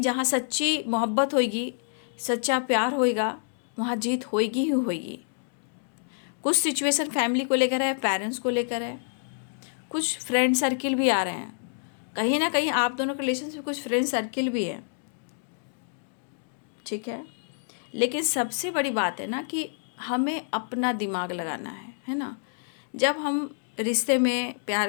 जहाँ सच्ची मोहब्बत होगी, सच्चा प्यार होएगा, वहाँ जीत होएगी ही होएगी। कुछ सिचुएशन फैमिली को लेकर है, पेरेंट्स को लेकर है, कुछ फ्रेंड सर्किल भी आ रहे हैं। कहीं ना कहीं आप दोनों के रिलेशन में कुछ फ्रेंड सर्किल भी है, ठीक है। लेकिन सबसे बड़ी बात है ना कि हमें अपना दिमाग लगाना है ना। जब हम रिश्ते में प्यार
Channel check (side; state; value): right; silent; digital silence